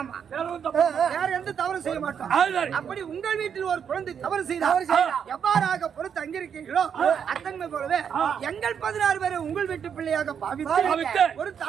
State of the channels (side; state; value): left; quieter; 7.7 dB